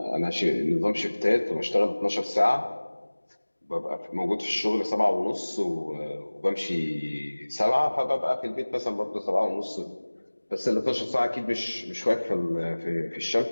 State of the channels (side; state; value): both; inverted; correlation -1.00